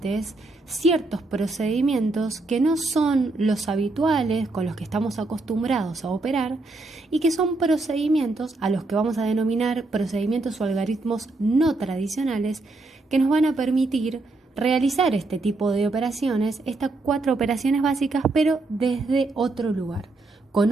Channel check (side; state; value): left; quieter; 3.2 dB